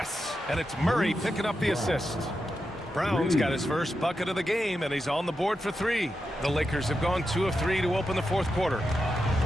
and it's Murray picking up the assist. Brown's got his first bucket of the game, and he's on the board for 3. The Lakers have gone 2 of 3 to open the 4th quarter.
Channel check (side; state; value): both; normal; correlation 0.88